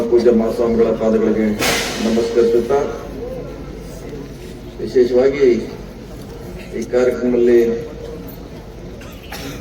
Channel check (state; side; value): identical; both; correlation 1.00